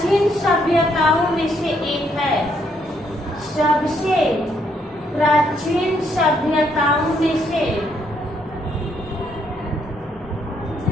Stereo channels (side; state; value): both; normal; correlation 0.72